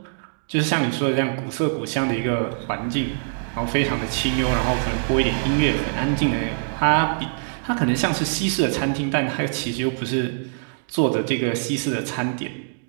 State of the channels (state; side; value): silent; left; digital silence